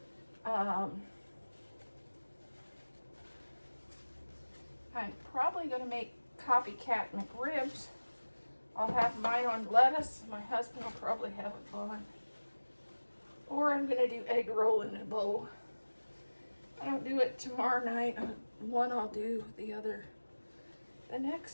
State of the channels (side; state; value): both; inverted; correlation -1.00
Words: I'm probably going to make copycat McRibs. I'll have mine on lettuce. My husband will probably have it on. Or I'm going to do egg roll in a bowl. I don't do it tomorrow night. One I'll do, the other the